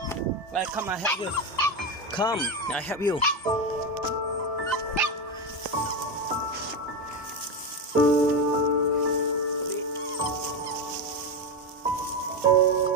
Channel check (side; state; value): both; normal; correlation 0.14